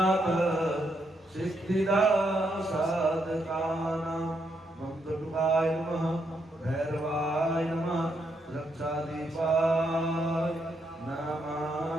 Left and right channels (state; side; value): normal; both; correlation 0.78